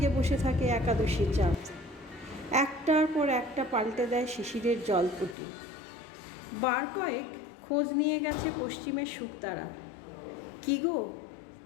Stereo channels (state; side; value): drops out; right; at 5.4 s